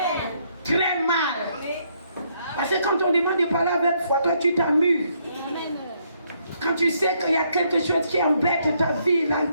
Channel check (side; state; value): both; inverted; correlation -0.72